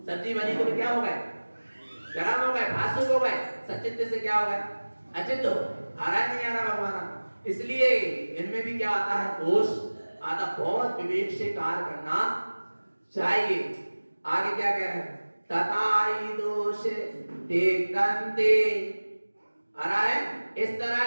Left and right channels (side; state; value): both; inverted; correlation -1.00